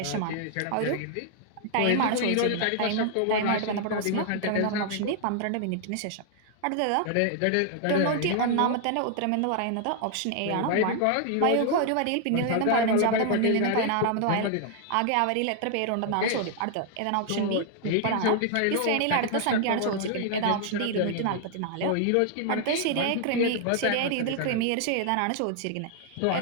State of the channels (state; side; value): different; both; correlation 0.00